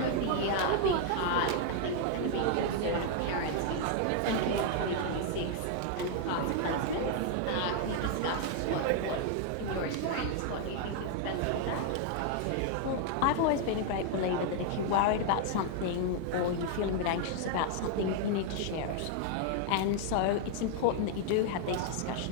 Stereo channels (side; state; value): both; different; correlation 0.00